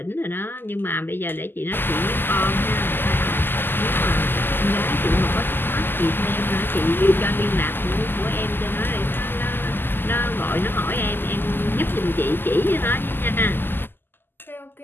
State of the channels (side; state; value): right; late; 0.096 ms